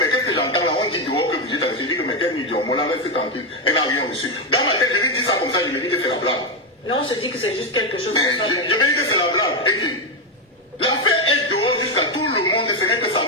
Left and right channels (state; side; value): normal; both; correlation 0.06